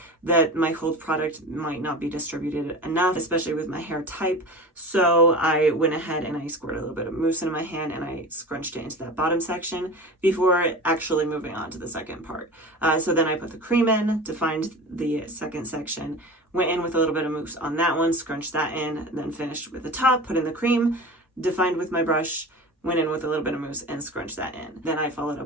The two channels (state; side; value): normal; both; correlation 0.33